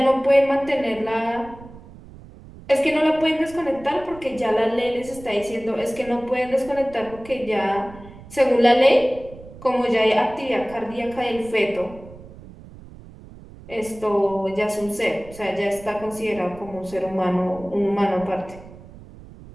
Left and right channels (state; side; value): noise; right; rumble, 18 dB below the sound